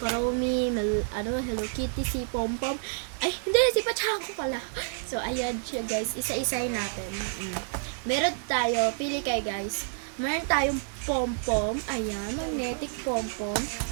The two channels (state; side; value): silent; left; digital silence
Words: Chromie, Hello Kitty, si Pompom. Ay, hindi, si Pachako pala. So ayan siya guys, isa-isay natin. Meron tayo, pili kayo guys. Meron tayong Pompom, ayan, magnetic Pompom.